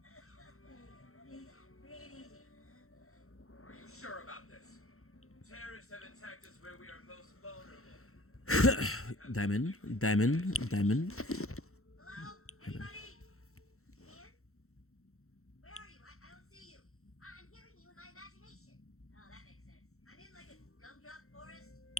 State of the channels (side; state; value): right; late; 0.63 ms